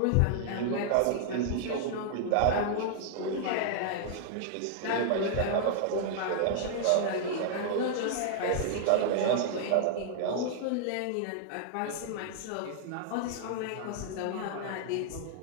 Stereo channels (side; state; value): both; different; correlation -0.01